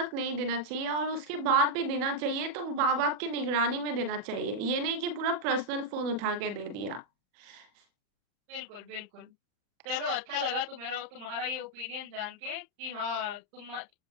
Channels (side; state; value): left; late; 40 ms